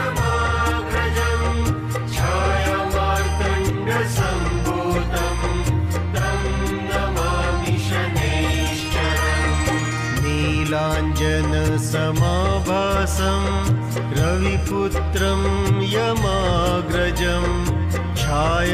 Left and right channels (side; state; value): both; identical; correlation 1.00